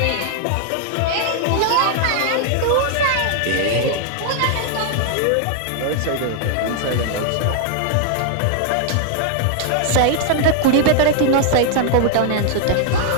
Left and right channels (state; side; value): different; both; correlation 0.00